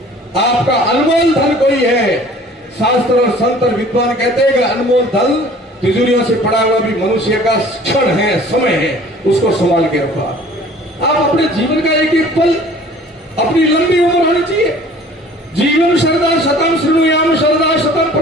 आपका अनमोल धन कोई है। शास्त्र और संत और विद्वान कहते हैं कि अनमोल धन तिजोरियों से पड़ा हुआ भी मनुष्य का क्षण है, समय है, उसको संभाल के रखो। आप अपने जीवन का एक एक पल, अपनी लंबी उम्र होनी चाहिए। जीवन शरदा शतम श्रृणुयाम शरदा शतम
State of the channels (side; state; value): both; normal; correlation 0.49